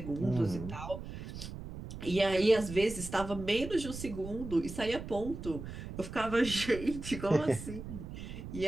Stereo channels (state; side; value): noise; right; rumble, 10 dB below the sound